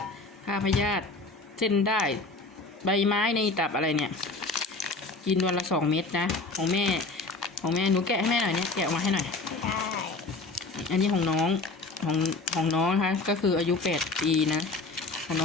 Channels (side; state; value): right; quieter; 3.5 dB